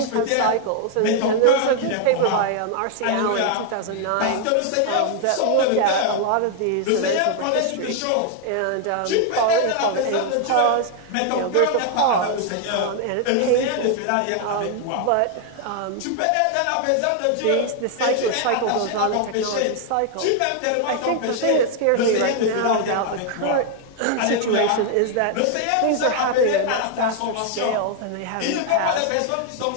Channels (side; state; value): both; different; correlation 0.00